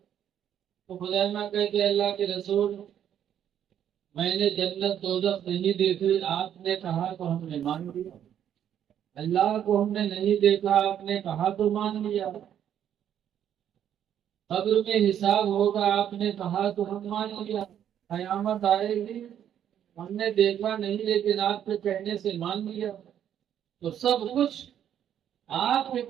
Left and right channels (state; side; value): quieter; left; 9.9 dB